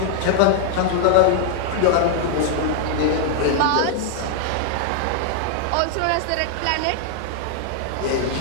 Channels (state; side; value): different; both; correlation 0.00